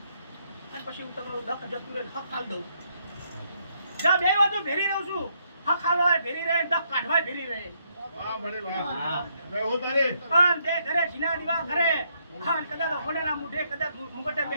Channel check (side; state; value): both; inverted; correlation -0.74